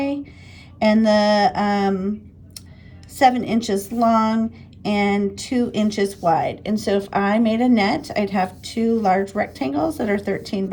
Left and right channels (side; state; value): both; identical; correlation 1.00